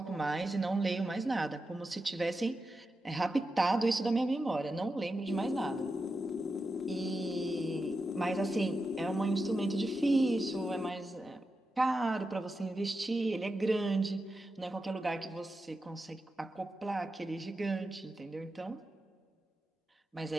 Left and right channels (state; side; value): normal; both; correlation 0.89